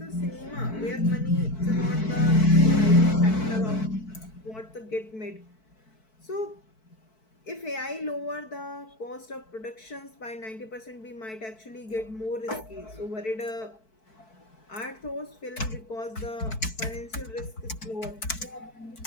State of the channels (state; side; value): late; right; 4.6 ms